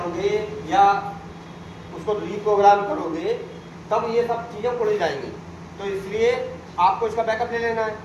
या उसको रीप्रोग्राम करोगे, तब ये सब चीज़ें उड़ जाएंगी, तो इसलिए आपको इसका बैकअप ले लेना है।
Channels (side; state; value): both; identical; correlation 1.00